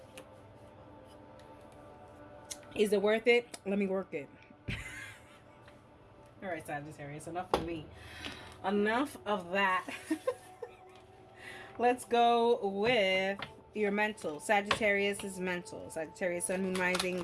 Is it worth it? Let me work it. All right, Sagittarius, enough of me. Enough of that. Let's go with your mental. Sagittarius is mental. Sagittarius, Sun, Moon, Rising,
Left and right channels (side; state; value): both; identical; correlation 1.00